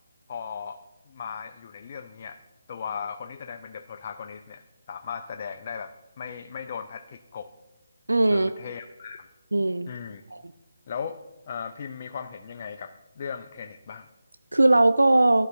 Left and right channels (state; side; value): inverted; both; correlation -0.95